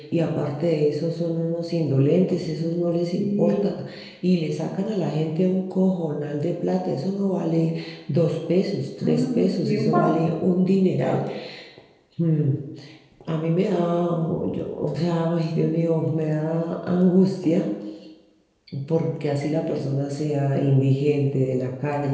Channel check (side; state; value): both; identical; correlation 1.00